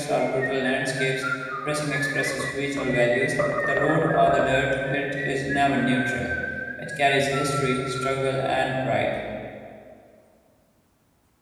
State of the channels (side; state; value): both; identical; correlation 1.00